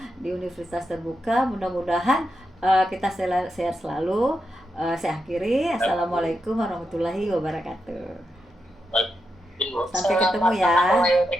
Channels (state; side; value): normal; both; correlation 0.86